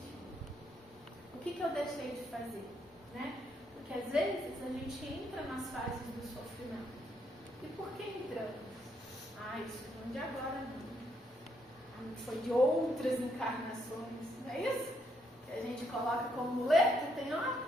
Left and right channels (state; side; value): normal; both; correlation 0.74